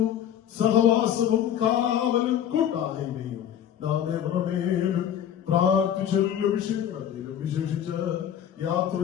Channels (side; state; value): right; quieter; 9.9 dB